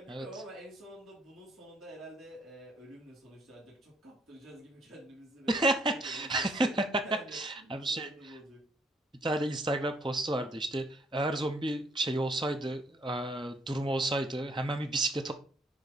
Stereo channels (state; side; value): normal; both; correlation 0.67